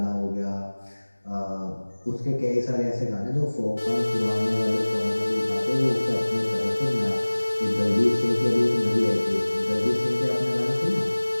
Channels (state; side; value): inverted; both; correlation -1.00